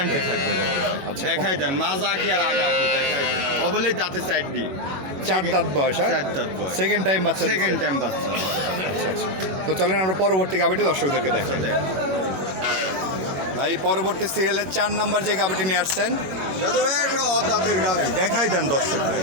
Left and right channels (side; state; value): left; late; 21 ms